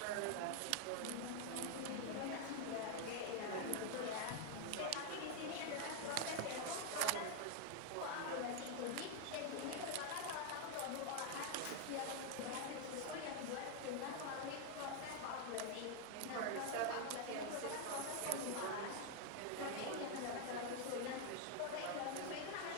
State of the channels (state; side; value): different; both; correlation 0.00